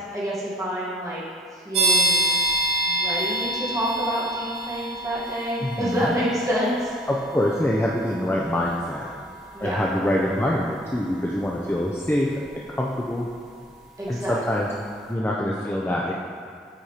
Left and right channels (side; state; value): both; normal; correlation 0.56